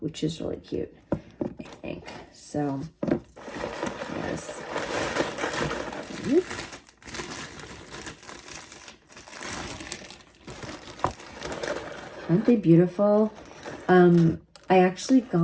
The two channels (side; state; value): both; identical; correlation 1.00